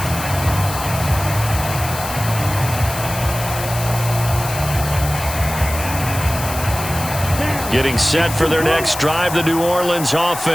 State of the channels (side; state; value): left; noise; hiss, 9 dB below the sound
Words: Getting set for their next drive, the New Orleans